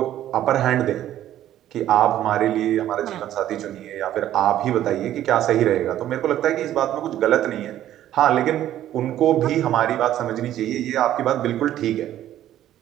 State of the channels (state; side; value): quieter; left; 12.4 dB